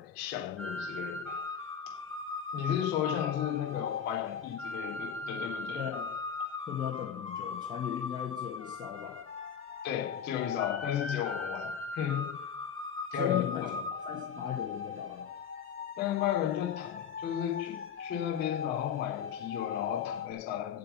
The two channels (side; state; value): right; quieter; 8.0 dB